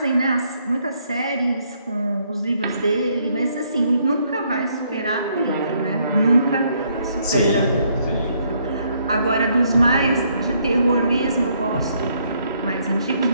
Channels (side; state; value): both; inverted; correlation -0.70